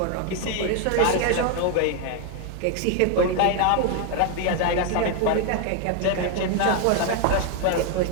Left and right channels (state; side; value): different; both; correlation 0.01